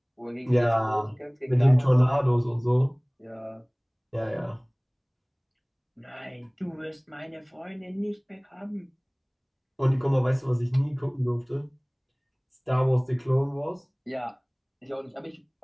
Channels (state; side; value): identical; both; correlation 1.00